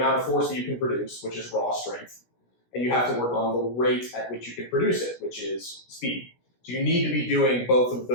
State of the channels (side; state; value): right; late; 17 ms